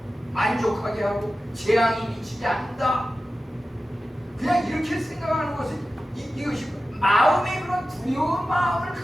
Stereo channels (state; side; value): normal; both; correlation 0.94